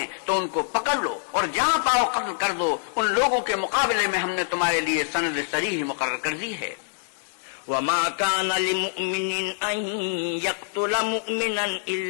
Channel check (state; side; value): silent; right; 62 dB below the other